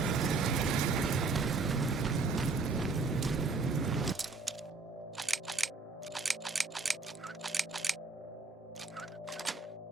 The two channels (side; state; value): left; quieter; 4.1 dB